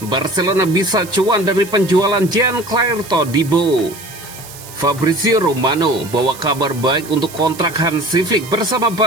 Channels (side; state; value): right; noise; hiss, 16 dB below the sound